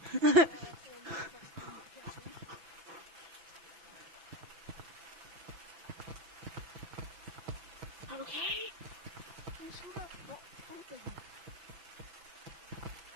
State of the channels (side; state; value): left; late; 6.0 ms